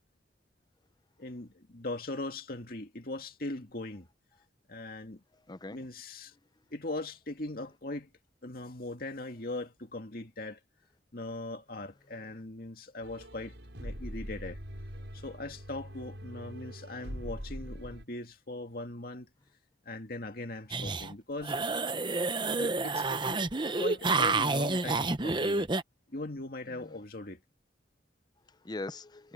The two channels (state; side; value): normal; both; correlation 0.29